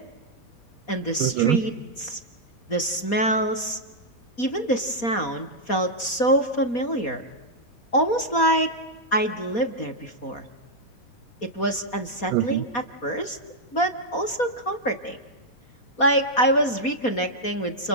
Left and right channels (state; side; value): late; right; 4.2 ms